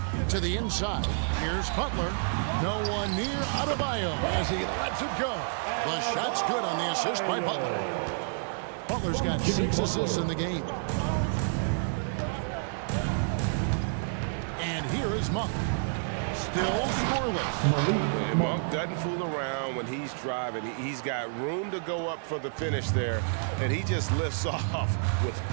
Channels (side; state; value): left; silent; digital silence